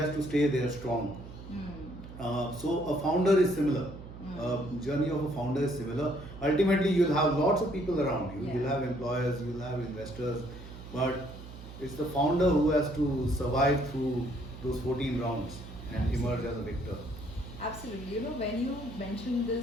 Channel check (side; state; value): right; noise; hum, 14 dB below the sound